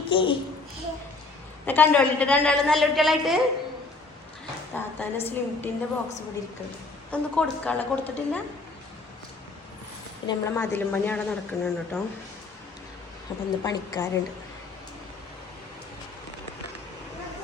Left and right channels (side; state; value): right; quieter; 3.6 dB